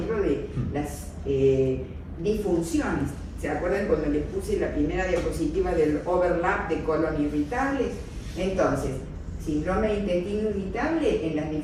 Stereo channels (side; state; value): both; identical; correlation 1.00